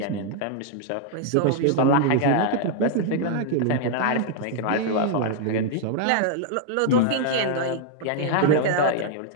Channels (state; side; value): different; both; correlation 0.00